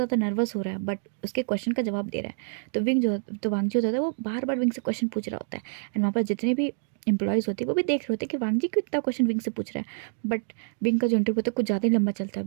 नर्वस हो रहा है, बट उसके क्वेश्चन का जवाब दे रहा है। तो वांगजी होता है वो बार बार विंग से क्वेश्चन पूछ रहा होता है, एंड वहाँ पर जितने भी एम्प्लॉयज़ होते हैं वो भी देख रहे होते हैं कि वांगजी क्यों इतना क्वेश्चन विंग से पूछ रहा है। बट विंग का जो इंटरव्यू होता है कुछ ज़्यादा ही लंबा चलता है,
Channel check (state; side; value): silent; left; digital silence